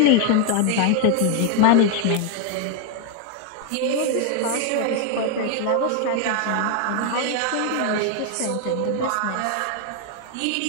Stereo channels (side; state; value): both; different; correlation 0.00